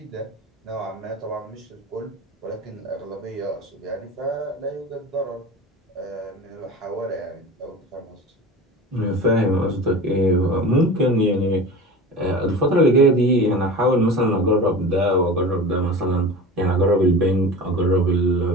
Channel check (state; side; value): normal; both; correlation 0.34